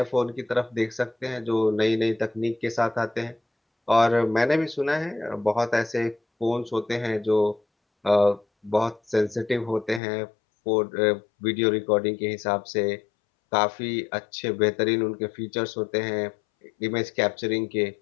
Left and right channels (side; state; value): right; drops out; at 10.0 s